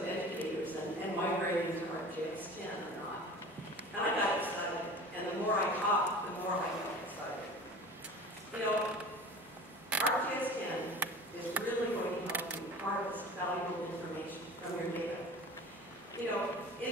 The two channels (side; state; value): both; normal; correlation 0.39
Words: educators and migrating to ArcGIS10 or not. And I got excited, and the more I talked, the more I got excited. You know, ArcGIS10 is really going to help you harvest valuable information from your data. You know,